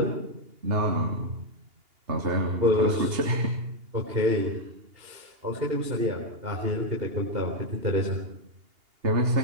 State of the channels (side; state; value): left; late; 2.8 ms